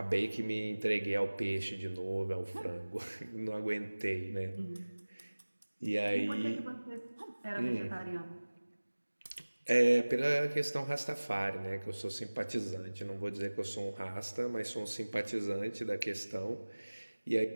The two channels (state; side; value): inverted; both; correlation -1.00